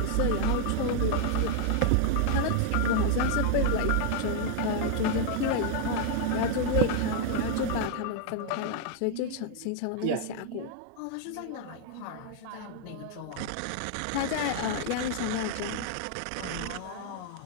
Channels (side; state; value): both; different; correlation 0.00